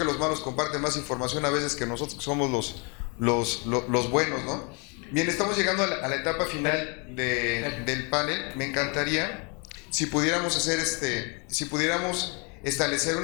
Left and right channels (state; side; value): quieter; right; 33.3 dB